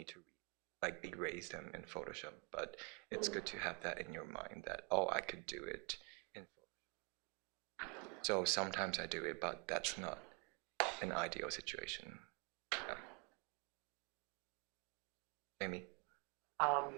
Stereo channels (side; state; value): left; quieter; 31.6 dB